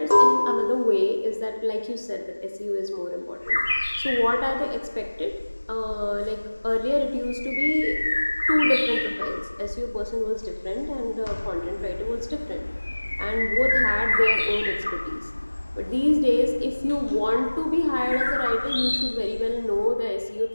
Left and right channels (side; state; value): both; inverted; correlation -1.00